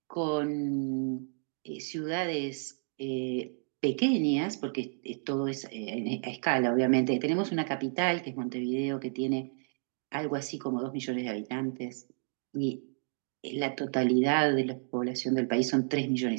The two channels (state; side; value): silent; left; 57 dB below the other